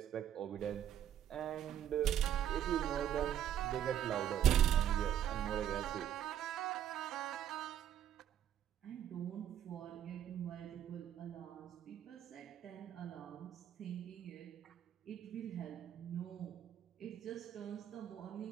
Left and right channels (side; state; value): left; quieter; 10.3 dB